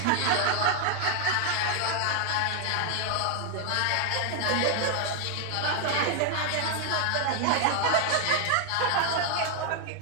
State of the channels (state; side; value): different; both; correlation 0.00